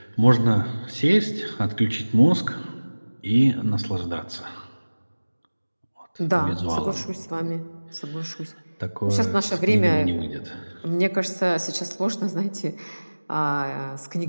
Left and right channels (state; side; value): inverted; both; correlation -1.00